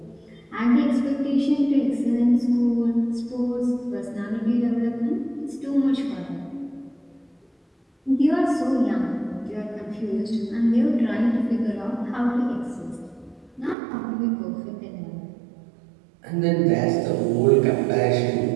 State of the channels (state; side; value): drops out; left; at 13.8 s